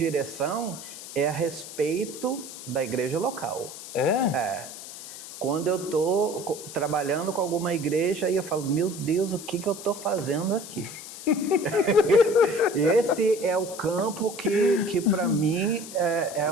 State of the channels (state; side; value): noise; left; hiss, 12 dB below the sound